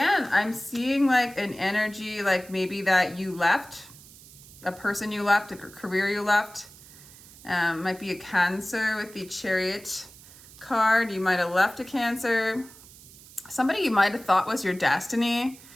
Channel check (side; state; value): right; noise; hiss, 21 dB below the sound